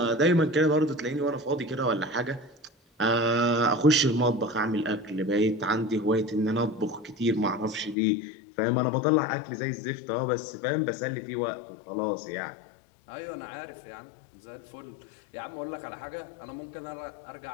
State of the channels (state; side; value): drops out; right; at 8.0 s